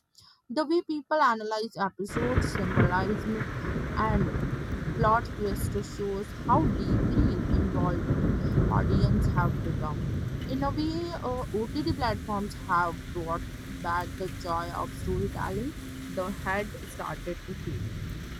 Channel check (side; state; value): both; identical; correlation 1.00